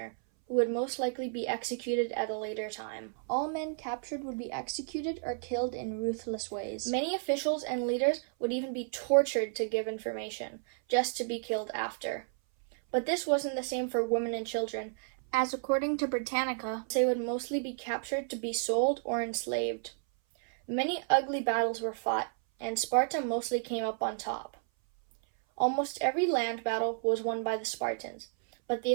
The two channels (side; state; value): left; silent; 56 dB below the other